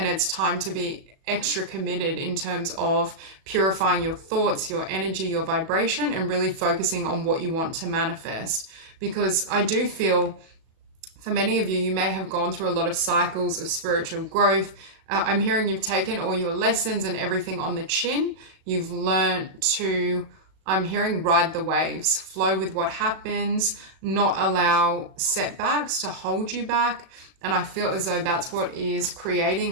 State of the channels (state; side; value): late; left; 37 ms